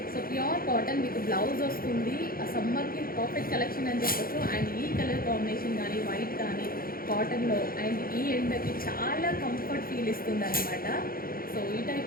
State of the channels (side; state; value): right; late; 0.42 ms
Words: సో ప్యూర్ కాటన్ మీకు బ్లౌజ్ వస్తుంది. ఆ సమ్మర్కి పర్ఫెక్ట్ కలెక్షన్ అని చెప్పొచ్చు. అండ్ ఈ కలర్ కాంబినేషన్ కానీ వైట్ కానీ కాటన్లో అండ్ ఈ ఎండకి చాలా కంఫర్ట్ ఫీల్ ఇస్తుంది అనమాట. సో ఈ